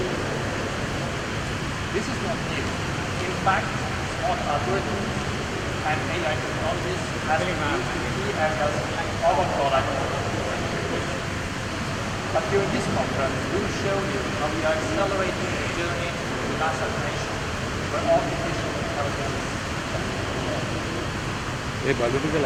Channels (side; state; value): both; identical; correlation 1.00